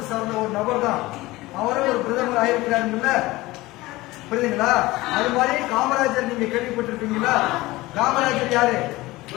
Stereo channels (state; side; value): quieter; right; 19.5 dB